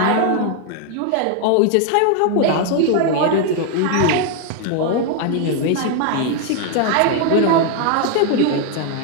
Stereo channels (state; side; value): different; both; correlation 0.00